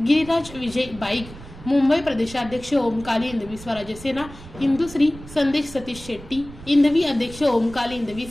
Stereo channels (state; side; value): noise; right; rumble, 16 dB below the sound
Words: विजय बाईक, मुंबई प्रदेशाध्यक्ष ओम काली हिंदवी स्वराज्य सेना इंदुश्री संदेश सतीश शेट्टी, हिंदवी अध्यक्ष ओम काली हिंदवी